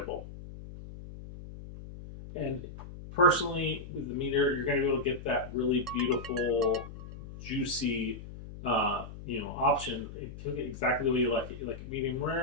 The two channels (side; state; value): left; noise; hum, 13 dB below the sound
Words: And personally, with the meter, you're going to be able to get that really beautiful, juicy, option. Cook it exactly the way you like it. You like it medium